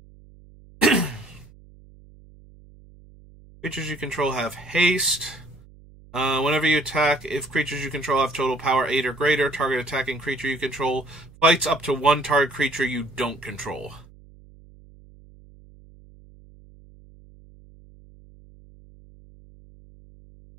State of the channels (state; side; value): noise; right; hum, 24 dB below the sound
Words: Creatures you control have haste. Whenever you attack, if creatures you control have total power 8 or greater, target attacking creature you control fights up to one target creature you don't control.